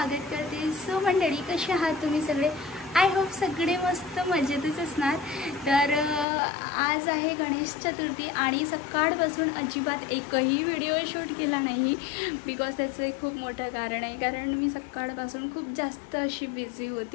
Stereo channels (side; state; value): right; drops out; at 6.2 s